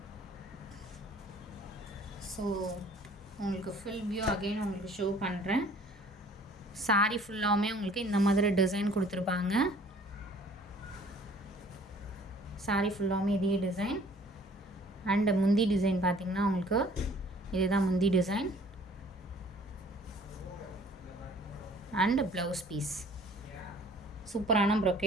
ஸோ உங்களுக்கு ஃபுல் வியூ அகெயின் உங்களுக்கு ஷோ பண்ணுறேன். சாரி ஃபுல்லாகவுமே உங்களுக்கு இந்த மாதிரி டிசைன் கொடுத்துருப்பாங்க. சாரி ஃபுல்லாகவுமே இதே டிசைன். அண்ட் முந்தி டிசைன் பார்த்திங்கன்னா உங்களுக்கு இதுதான் முந்தி டிசைன். அண்ட் ப்ளவுஸ் பீஸ் சூப்பரான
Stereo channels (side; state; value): both; normal; correlation 0.54